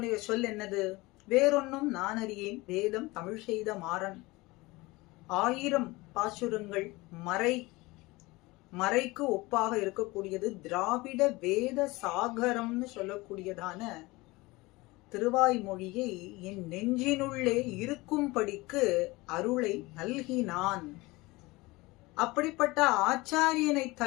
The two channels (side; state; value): right; quieter; 22.0 dB